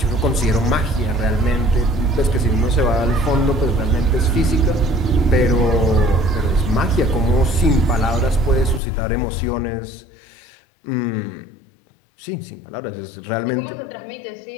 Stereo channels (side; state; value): right; drops out; at 8.8 s